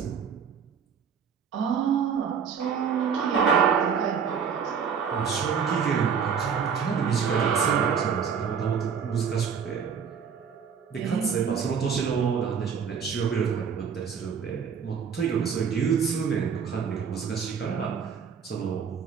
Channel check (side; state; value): left; quieter; 6.7 dB